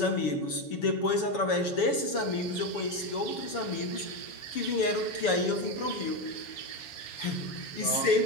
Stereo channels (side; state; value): right; late; 7.2 ms